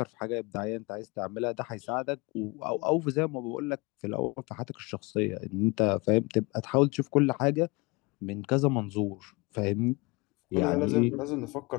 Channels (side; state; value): right; quieter; 25.8 dB